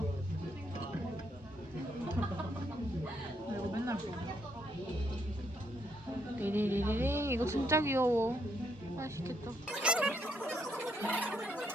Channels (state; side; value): normal; both; correlation 0.74